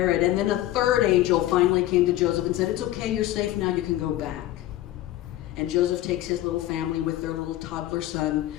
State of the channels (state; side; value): quieter; right; 14.6 dB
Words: And then a third angel finally came to Joseph and said, it's okay, you're safe now, you can go back. And Joseph takes his little family with their little toddler son